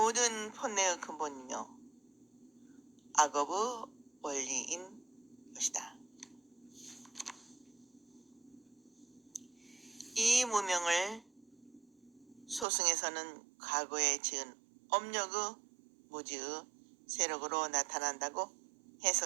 번뇌의 근본이며 악업의 원리인 것이다. 이 무명을 소승에서는 과거에 지은 업력의 무지의 세력으로 나타난다고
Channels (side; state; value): left; drops out; at 12.7 s